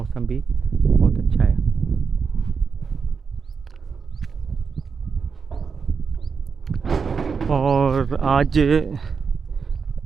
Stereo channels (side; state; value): left; quieter; 5.6 dB